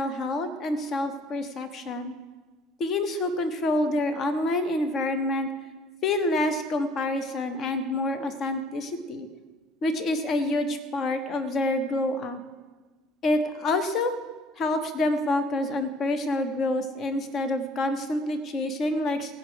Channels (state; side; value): normal; both; correlation 0.56